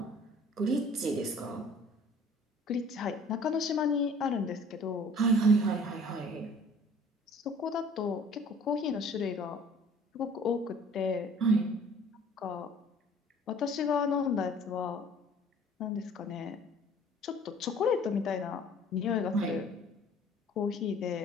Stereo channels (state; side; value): normal; both; correlation 0.51